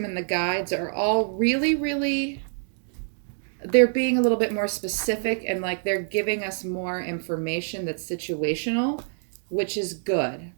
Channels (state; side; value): silent; left; digital silence